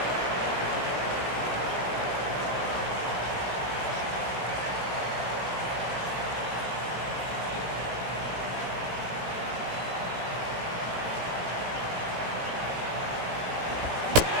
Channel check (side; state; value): left; late; 17 ms